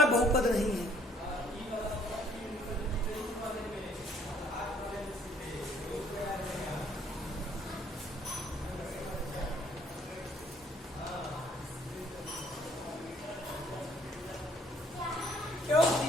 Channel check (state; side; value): normal; both; correlation 0.62